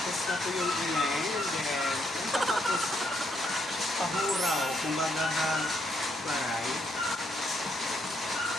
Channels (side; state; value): both; normal; correlation 0.75